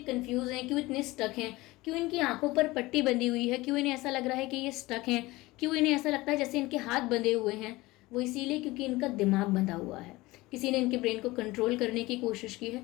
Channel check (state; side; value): quieter; right; 20.3 dB